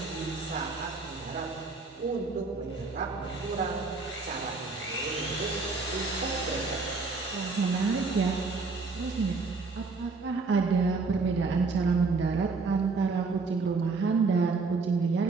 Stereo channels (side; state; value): left; quieter; 4.1 dB